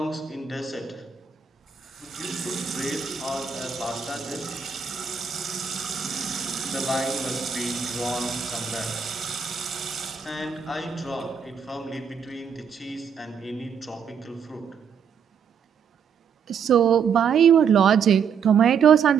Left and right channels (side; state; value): left; quieter; 6.8 dB